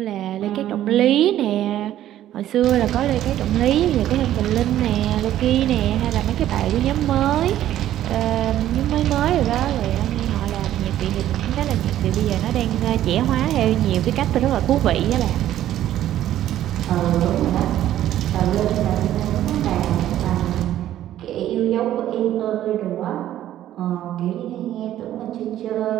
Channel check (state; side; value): quieter; left; 12.5 dB